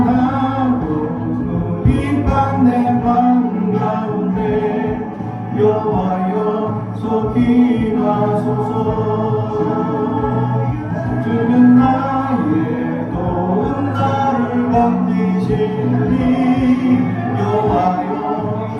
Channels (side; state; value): both; identical; correlation 1.00